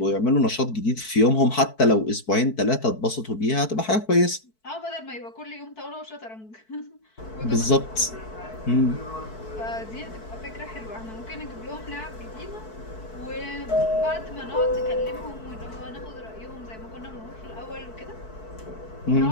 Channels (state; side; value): late; right; 4.6 ms